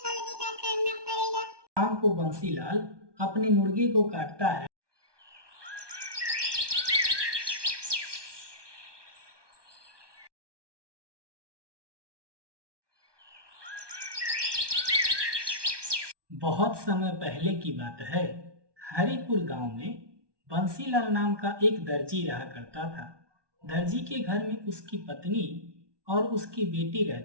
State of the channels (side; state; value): left; late; 1.2 ms